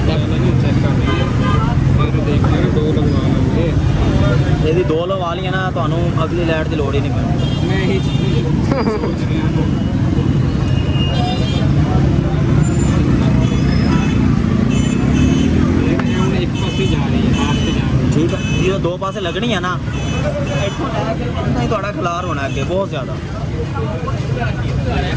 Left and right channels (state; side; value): identical; both; correlation 1.00